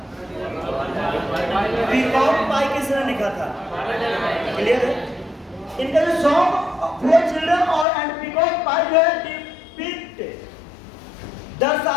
पीकॉक पाई किसने लिखा था? क्लियर है? इनका जो सॉन्ग फॉर चिल्ड्रन और एंड पीकॉक पाई जो है डिपिक्ट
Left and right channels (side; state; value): right; drops out; at 7.9 s